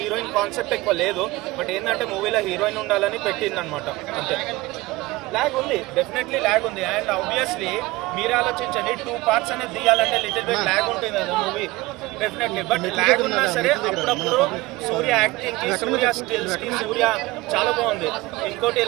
కాన్సెప్ట్ ఎక్కువ లేదు, బట్ ఏంటంటే మూవీలో హీరోయిన్ ఉండాలని పెట్టింది అనమాట, అంతే. ల్యాగ్ ఉంది, డెఫినెట్లీ ల్యాగ్ ఉంది. అండ్ ఆబ్వియస్లీ మీరు ఆలోచించండి, 2 parts అనేది తీయాలంటే లిటిల్ బిట్ ల్యాగ్ ఉంటుంది కదా మూవీ, డెఫినెట్లీ. బట్ ల్యాగ్ ఉన్నా సరే అప్పుడప్పుడు సూర్య యాక్టింగ్ కి, సూర్య స్కిల్స్ కి సూర్య చాలా బాగుంది. ఇంకోటి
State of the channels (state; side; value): quieter; left; 20.4 dB